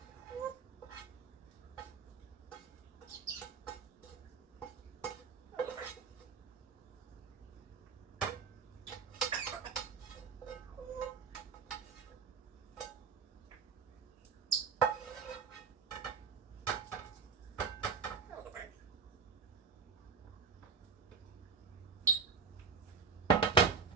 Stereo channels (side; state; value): left; quieter; 5.5 dB